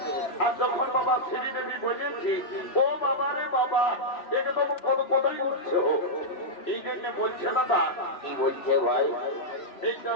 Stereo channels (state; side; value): late; right; 3.0 ms